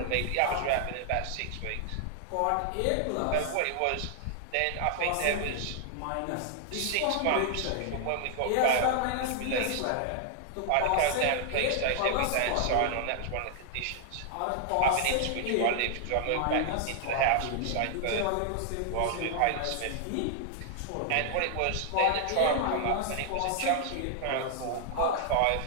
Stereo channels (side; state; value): both; different; correlation -0.01